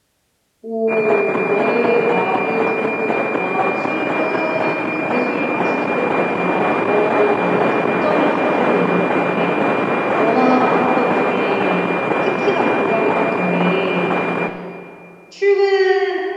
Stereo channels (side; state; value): both; identical; correlation 1.00